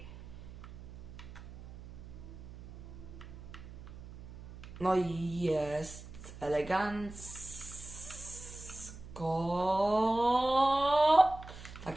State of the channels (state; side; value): noise; right; hum, 14 dB below the sound